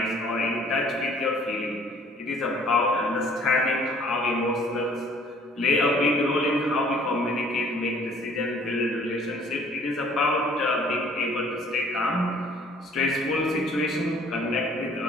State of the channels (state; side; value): normal; both; correlation 0.56